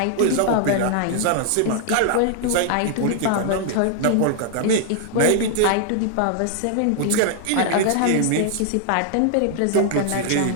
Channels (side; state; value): both; different; correlation 0.00